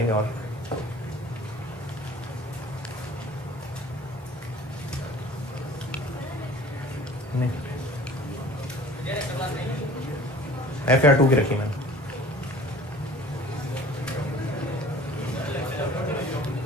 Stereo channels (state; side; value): normal; both; correlation 0.47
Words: और नहीं। FR2 की रखी मैंने,